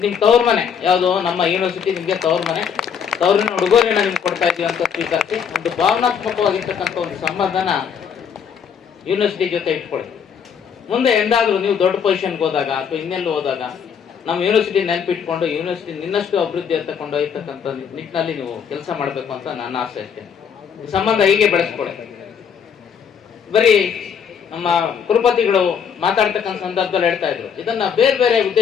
ನಿಮ್ ತವ್ರ ಮನೆ ಯಾವುದು, ನಮ್ಮ ಯೂನಿವರ್ಸಿಟಿ ನಿಮ್ಗೆ ತವ್ರ ಮನೆ, ತವರಿನ ಉಡುಗೊರೆನ ನಿಮ್ಗೆ ಕೊಡ್ತಾ ಇದೀವಿ ಅಂತ ಸ್ವೀಕರಿಸಿ ಒಂದು ಭಾವನಾತ್ಮಕವಾಗಿರ್ತಕ್ಕಂಥ ಒಂದು ಸಂಬಂಧನ ಯೂನಿವರ್ಸಿಟಿ ಜೊತೆ ಇಟ್ಕೊಳ್ಳಿ. ಮುಂದೆ ಎಂದಾದ್ರೂ ನೀವು ದೊಡ್ಡ ಪೊಸಿಷನ್ಗೆ ಹೋದಾಗ ಅಥವಾ ಇನ್ನೆಲ್ಲೂ ಹೋದಾಗ ನಮ್ಮ ಯೂನಿವರ್ಸಿಟಿ ನೆನಪಿಟ್ಕೊಂಡು ಯೂನಿವರ್ಸಿಟಿ ನಿನ್ನಷ್ಟು ಅಭಿವೃದ್ಧಿ ಅಂತ ಕೊಂಡೊಯ್ಯತಕ್ಕಂಥ ನಿಟ್ಟಿನಲ್ಲಿ ನೀವು ಕೆಲಸ ಮಾಡಬೇಕು ಅಂತ ನನ್ನ ಆಸೆ ಅಷ್ಟೇ. ಈ ಸಂಬಂಧ ಹೀಗೆ ಬೆಳೆಸ್ಕೊಳ್ಳಿ. ಬರೀ ನಮ್ಮ ಕುಲಪತಿಗಳು ಮಾತಾಡ್ತಕ್ಕಂಥ ಸಂದರ್ಭದಲ್ಲಿ ಹೇಳ್ತಾ ಇದ್ರು, ಇದನ್ನ ಬೇರೆ ಬೇರೆ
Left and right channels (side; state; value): right; quieter; 7.3 dB